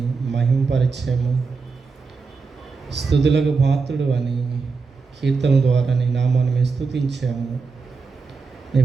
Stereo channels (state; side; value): quieter; left; 4.7 dB